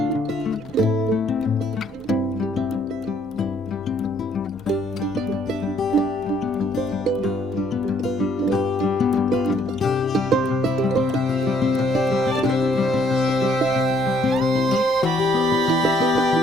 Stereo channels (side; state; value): both; normal; correlation 0.66